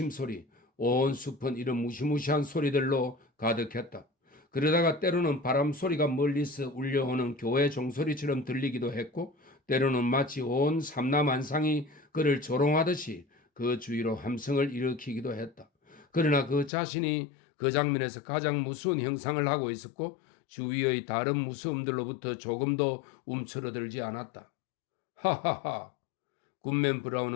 온 숲은 이런 무시무시한 소리들로 가득했다. 그러다가 때로는 바람 소리가 멀리서 울려오는 교회 종소리처럼 들리기도 했고 때로는 마치 온 삼라만상이 그를 조롱하듯이 그 주위로 함성을 일으키기도 했다. 그러나 그 자신이 그 장면에서 가장 무서운 형상을 하고 있었고 주위의 다른 무서움들로부터 조금도 움츠러들지 않았다. 하하하! 굿맨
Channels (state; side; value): drops out; right; at 16.7 s